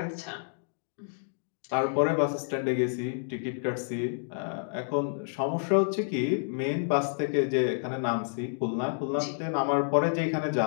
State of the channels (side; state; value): right; silent; digital silence